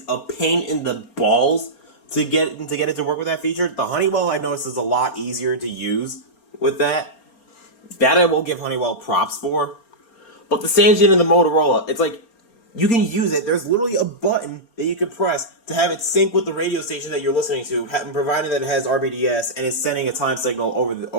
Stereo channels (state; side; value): late; right; 4.3 ms